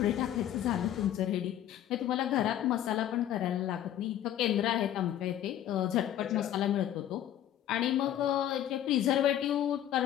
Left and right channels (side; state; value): right; quieter; 11.5 dB